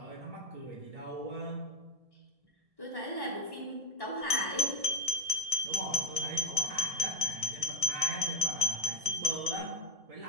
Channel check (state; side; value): late; left; 1.7 ms